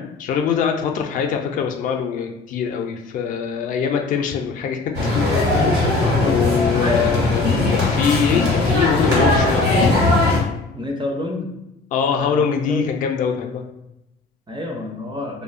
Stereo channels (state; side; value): quieter; right; 3.8 dB